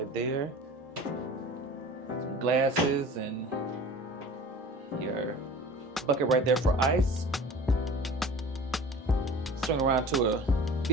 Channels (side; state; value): both; normal; correlation 0.42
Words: there. Some glasses and your bucket right there for ice. Swing around to a